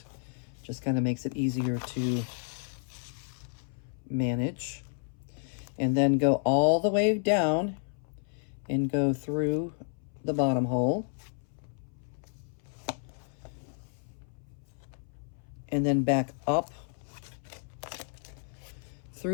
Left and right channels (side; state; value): right; silent; 57 dB below the other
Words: Just kind of makes it easier to manage. And then go all the way down and go through the bottom hole. And then back up